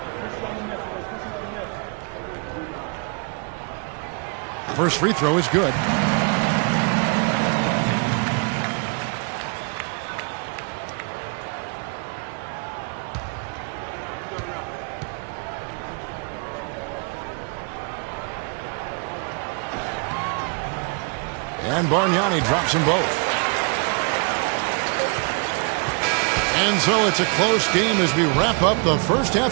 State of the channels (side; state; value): left; quieter; 36.4 dB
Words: First free throw is good. And Bargnani drops them both. And so it's a close game as we wrap up the first